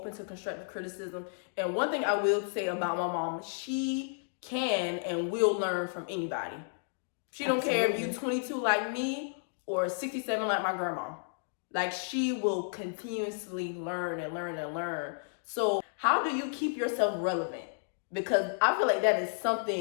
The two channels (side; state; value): right; silent; digital silence